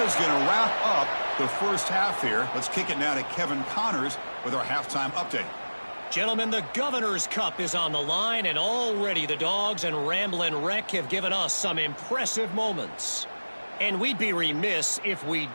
going to wrap up the first half here. Let's kick it now to Kevin Connors with our halftime update. Gentlemen, the Governor's Cup is on the line, and already the Dogs and Ramblin' Wreck have given us some impressive moments. And we'd be remiss if we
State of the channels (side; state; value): both; inverted; correlation -1.00